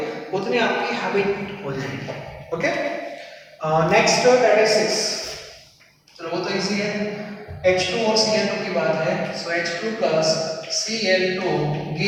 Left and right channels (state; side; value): identical; both; correlation 1.00